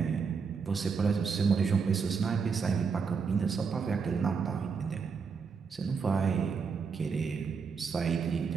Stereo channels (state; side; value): quieter; left; 5.6 dB